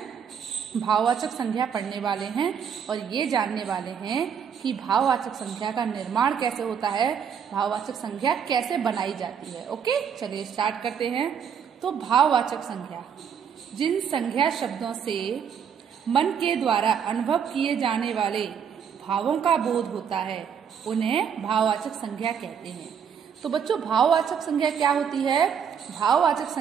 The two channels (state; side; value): quieter; left; 7.5 dB